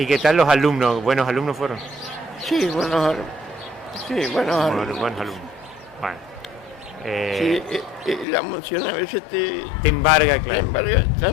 tal los alumnos? ¿Buenos alumnos fueron? Sí, buenos alumnos. Buenos alumnos. Bueno. Sí, la emoción a veces te embarga, claro. Te embarga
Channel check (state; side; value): drops out; right; at 8.2 s